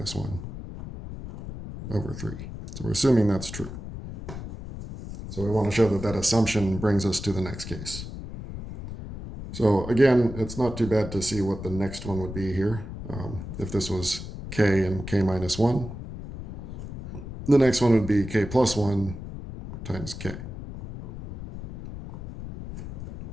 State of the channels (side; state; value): left; noise; rumble, 10 dB below the sound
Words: 1 over 3. So we're assuming that's true. So we want to show that that assumption brings us to the next case. So again, it's not too bad to see what the next one would be here. If this was k and k minus 1, the next one would be k plus 1 times k.